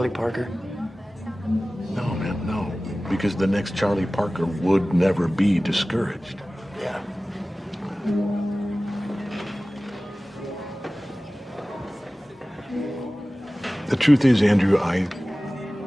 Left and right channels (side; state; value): both; normal; correlation 0.97